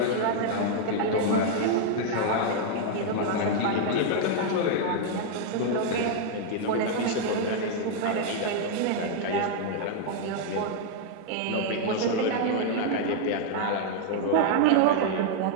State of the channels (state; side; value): different; both; correlation 0.00